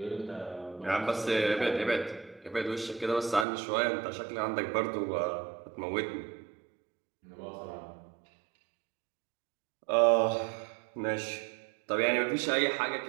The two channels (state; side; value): drops out; left; at 3.5 s